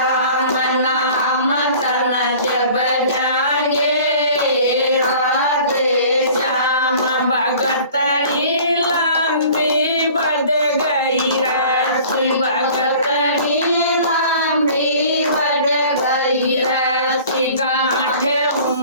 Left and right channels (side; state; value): both; inverted; correlation -0.47